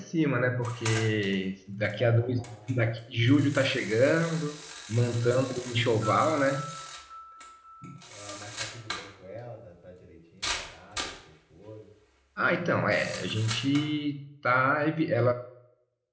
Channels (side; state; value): both; identical; correlation 1.00